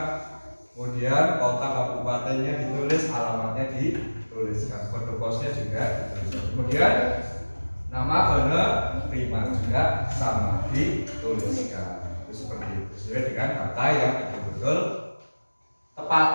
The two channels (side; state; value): both; inverted; correlation -1.00